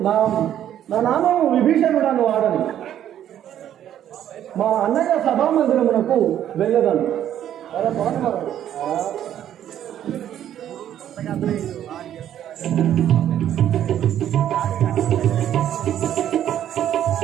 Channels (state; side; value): quieter; left; 10.8 dB